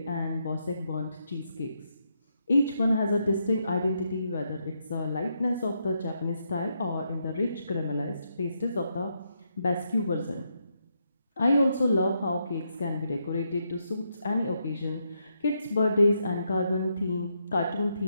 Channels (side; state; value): both; inverted; correlation -0.80